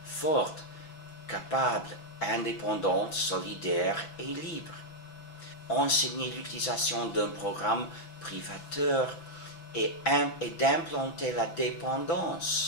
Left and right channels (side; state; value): right; late; 6.1 ms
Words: forte, capable, indépendante, solidaire et libre. Enseigner l'utilisation d'un programme privateur et d'implanter la